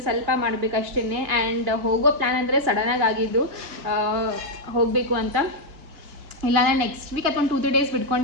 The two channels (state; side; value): late; left; 2.9 ms